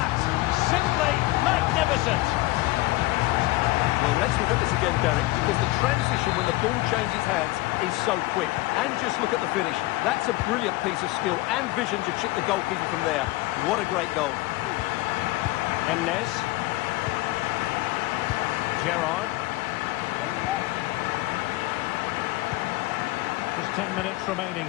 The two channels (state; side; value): quieter; right; 19.7 dB